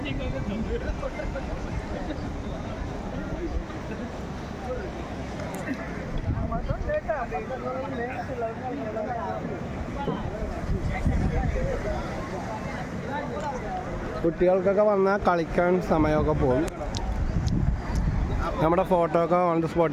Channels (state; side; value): identical; both; correlation 1.00